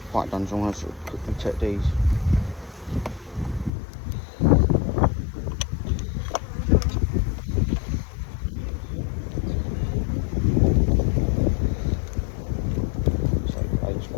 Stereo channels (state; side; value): drops out; right; at 3.7 s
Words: quite done, so I'm going to sort of quickly check these. So it's